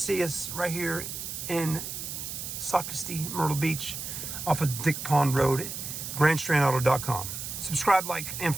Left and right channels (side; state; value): right; noise; hiss, 7 dB below the sound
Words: see us right here in Socastee, Myrtle Beach, off of Dick Pond Road, grandstrandauto.com. Subscribe, like, and